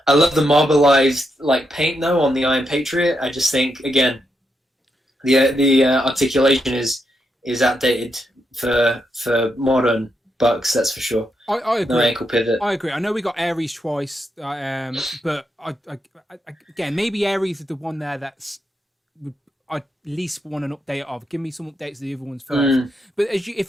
love the marbleized like paint though on the Iron Patriot. I just think again the articulation is outdated for modern bucks, that's for sure. I agree. No ankle pivot. I agree. I know we got Ares twice, but I again, maybe Ares is the one there that's I at least want an update of. Give me some updates of the other ones first. But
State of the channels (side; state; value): both; normal; correlation 0.82